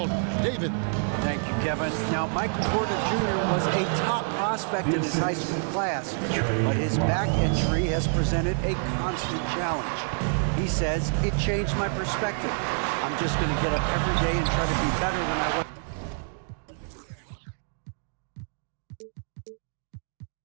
David. Thank you, Kevin. Now, Michael Porter Jr. was a top prospect in his high school class, but his back injury has presented a constant challenge. He says, it changed my perspective. I'm just going to get up every day and try to be better than I was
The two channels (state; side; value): silent; left; 60 dB below the other